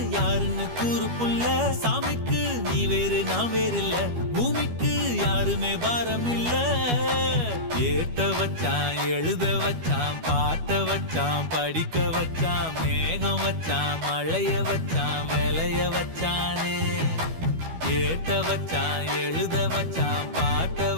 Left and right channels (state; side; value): late; left; 12 ms